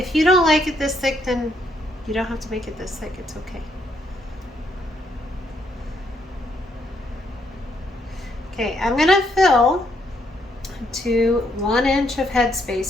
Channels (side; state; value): both; normal; correlation 0.73